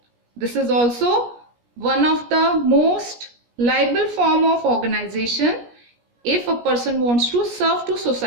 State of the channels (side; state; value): left; late; 17 ms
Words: this is also one of the most liable form of organization if a person wants to serve to